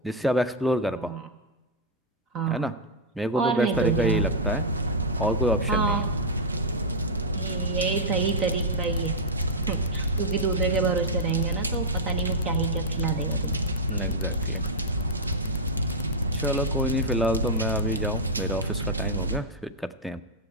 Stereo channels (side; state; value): both; normal; correlation -0.05